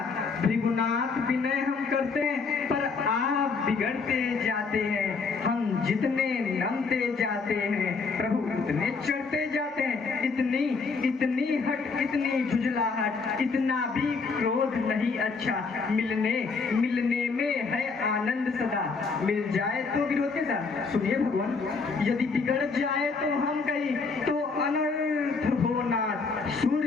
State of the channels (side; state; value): right; quieter; 4.7 dB